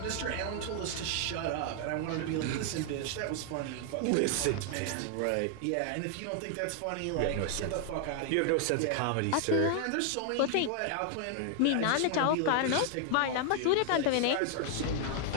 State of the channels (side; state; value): both; different; correlation 0.00